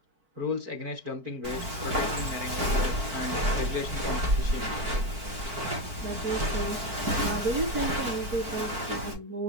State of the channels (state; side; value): late; left; 4.5 ms